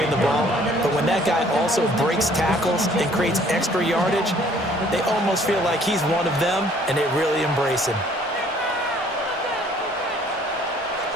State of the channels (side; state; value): both; normal; correlation 0.58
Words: the ball, but when that guy also breaks tackles and creates extra yardage, they almost feel like he's one of them, and they really embrace him.